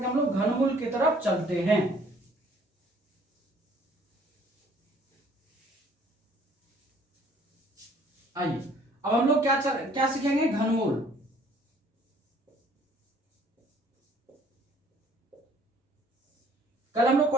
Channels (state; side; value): normal; both; correlation 0.58